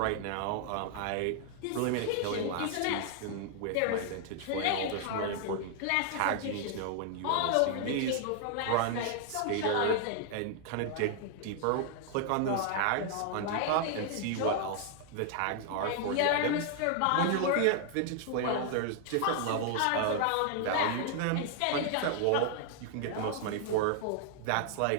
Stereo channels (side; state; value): both; different; correlation 0.00